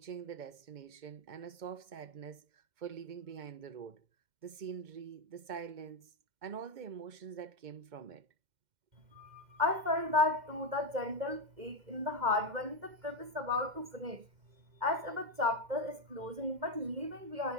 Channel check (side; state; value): left; late; 2.1 ms